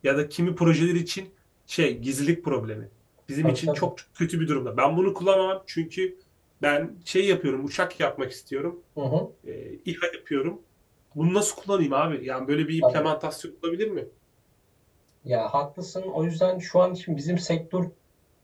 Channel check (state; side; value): identical; both; correlation 1.00